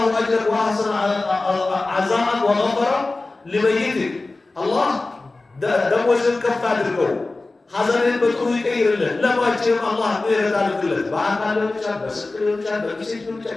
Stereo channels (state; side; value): quieter; right; 3.3 dB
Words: أجرك وأحسن عزاءك وغفر لميتك الله ደሞዝን ከፍ አድርገው ሐዘንን በጥሩ ይቀይርልን። ለባችንም አላህ ምህረት አድርግለት። በአካል ሊሆን ይችላል፣ በስልክ ሊሆን ይችላል፣ በጊዜት ሊሆን